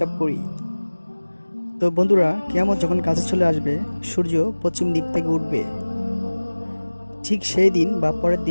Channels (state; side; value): inverted; both; correlation -1.00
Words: করি। তো বন্ধুরা, কিয়ামত যখন কাছে চলে আসবে, সূর্য পশ্চিম দিক থেকে উঠবে। ঠিক সেই দিন বা পরের